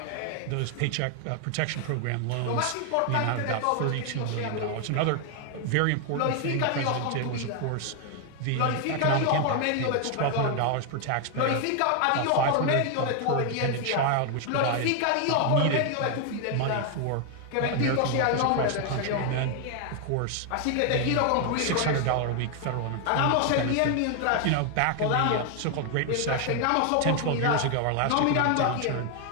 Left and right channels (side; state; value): both; different; correlation 0.00